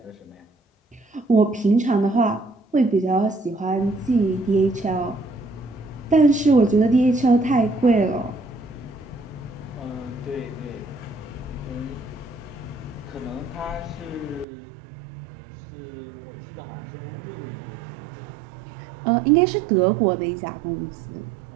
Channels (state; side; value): drops out; left; at 14.5 s